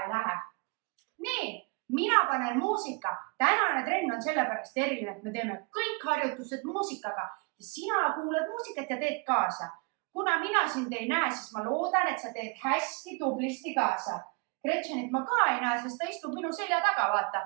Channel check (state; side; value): quieter; left; 30.8 dB